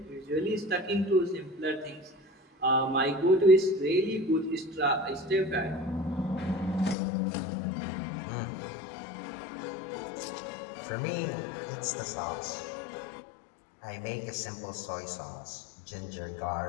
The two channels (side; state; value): right; drops out; at 7.0 s